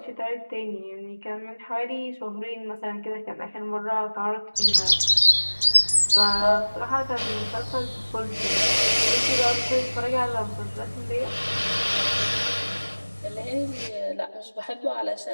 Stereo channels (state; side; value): inverted; both; correlation -1.00